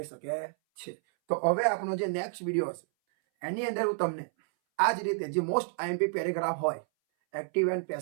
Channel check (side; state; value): left; silent; 58 dB below the other